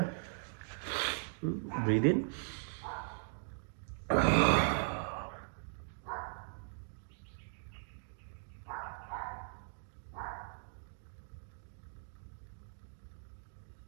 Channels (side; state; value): left; silent; digital silence